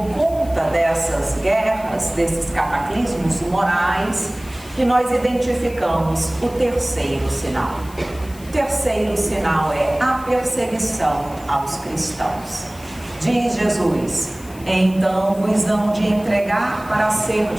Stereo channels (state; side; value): noise; left; hiss, 21 dB below the sound